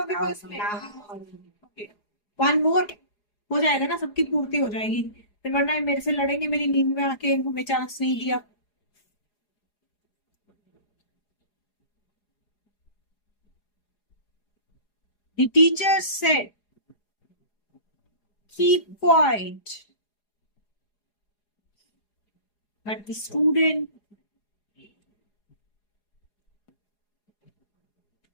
पास में? वन मोर हो जाएगा ना, सबकी पूर्ति हो जाएगी। फिर वरना मेरे से लड़ेंगे मेरी नींद में आके, हमें चांस नहीं दिया। The teacher said, keep quiet. But the student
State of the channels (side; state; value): right; late; 4.8 ms